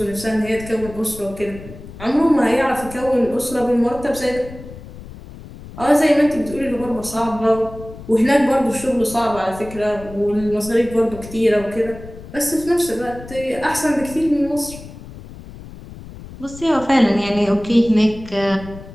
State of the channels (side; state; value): left; noise; rumble, 15 dB below the sound